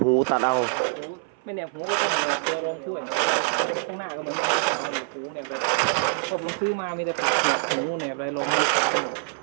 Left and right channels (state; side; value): silent; left; 57 dB below the other